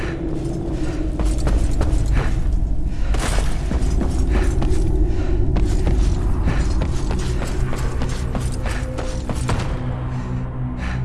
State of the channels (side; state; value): both; identical; correlation 1.00